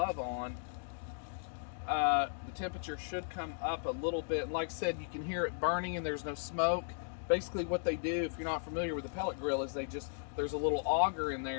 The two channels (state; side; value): silent; right; digital silence